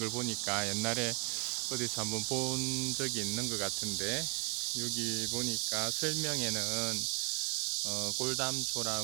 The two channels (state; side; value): quieter; left; 30.7 dB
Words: 보니까 옛날에 어디서 한번 본 적이 있는 것 같은데, 여기 보니까 설명에는